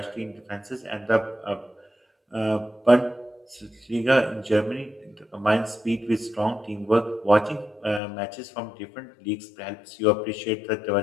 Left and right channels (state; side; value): drops out; right; at 8.0 s